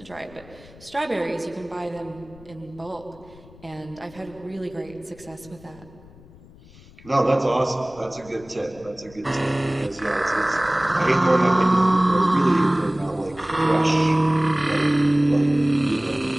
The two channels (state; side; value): noise; left; rumble, 23 dB below the sound